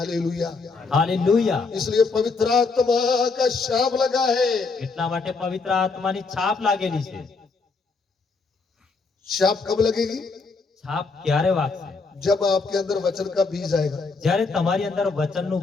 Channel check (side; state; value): right; quieter; 4.3 dB